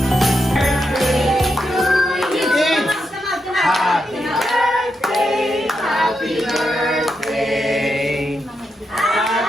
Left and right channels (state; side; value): normal; both; correlation 0.84